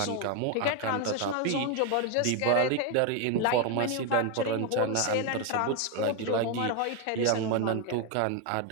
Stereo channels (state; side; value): different; both; correlation 0.01